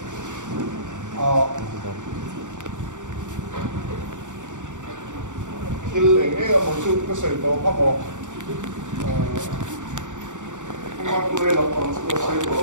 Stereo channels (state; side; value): late; left; 0.86 ms